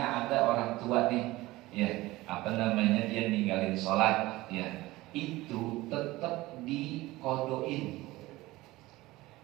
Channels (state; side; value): quieter; left; 19.0 dB